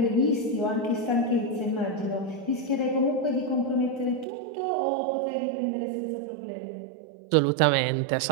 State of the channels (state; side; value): drops out; left; at 4.2 s